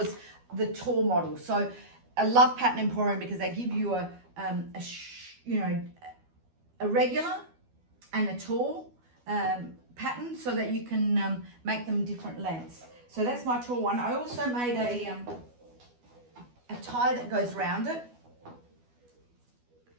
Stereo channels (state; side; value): late; left; 12 ms